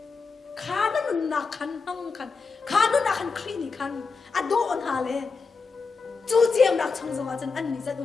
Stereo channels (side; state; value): right; quieter; 4.6 dB